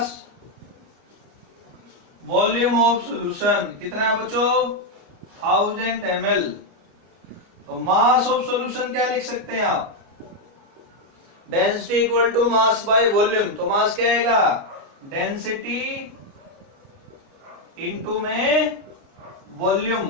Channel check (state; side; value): late; left; 29 ms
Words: वॉल्यूम ऑफ सोल्यूशन कितना है बच्चों, 1000 ml। तो मास ऑफ सॉल्यूशन क्या लिख सकते हैं आप, density equal to mass by volume. तो मास क्या आएगा, डेंसिटी इनटू में वॉल्यूम,